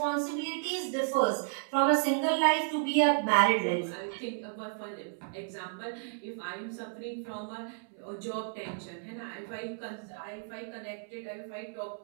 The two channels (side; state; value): left; silent; 56 dB below the other